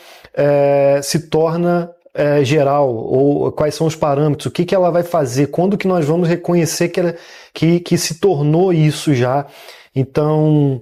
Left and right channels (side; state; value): both; identical; correlation 1.00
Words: se torna geral, ou quais são os parâmetros, o que ela vai fazer, quando que nós vamos reconhecer que se tornou isso já. Então,